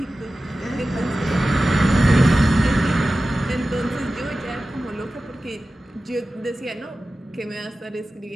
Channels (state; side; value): normal; both; correlation 0.95